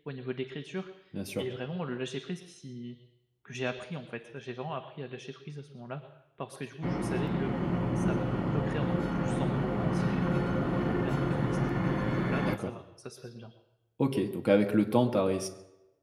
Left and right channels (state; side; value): identical; both; correlation 1.00